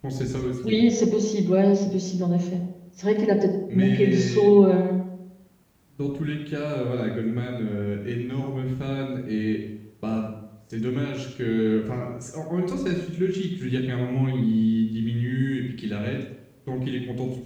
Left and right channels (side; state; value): both; identical; correlation 1.00